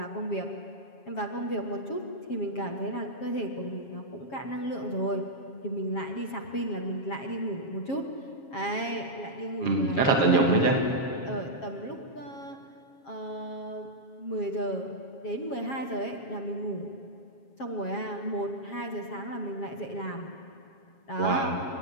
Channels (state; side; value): late; right; 7.3 ms